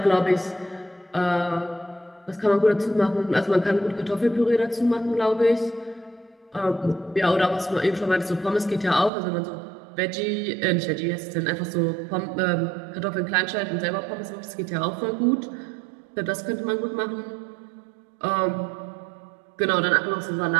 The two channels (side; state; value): left; drops out; at 9.1 s